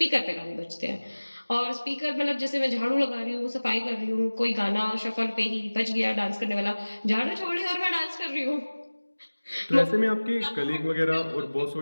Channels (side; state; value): both; inverted; correlation -1.00